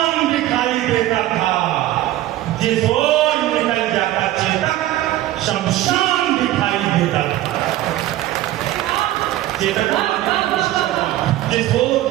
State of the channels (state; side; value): quieter; left; 14.7 dB